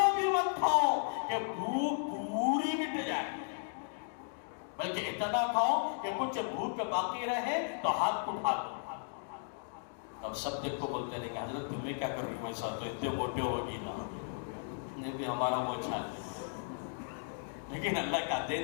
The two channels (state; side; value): silent; right; digital silence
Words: بھی مت کھاؤ کہ بھوک پوری مٹ جائے، بلکہ اتنا کھاؤ کہ کچھ بھوک باقی رہے تو ہاتھ اٹھا دو. اب سب دیکھ کو بولتے ہیں کہ حضرت تمہیں کیا کر رہی ہو، ایسا تو اتنے موٹے ہوگی نا، نہیں بھی ہمارا وہ چھال ہے، لیکن اللہ کا